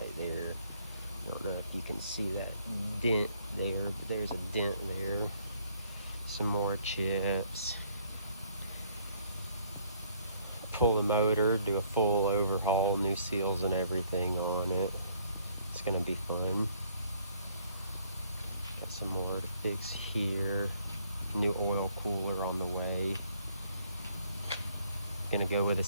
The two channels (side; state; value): both; inverted; correlation -0.64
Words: there. I don't know if you can see that dent there, but there's a dent there. Some more chips. Pull the motor, do a full overhaul, new seals and everything on it. It's gonna be fun. Got some more to fix here. New oil cooler on the way. Gonna go with a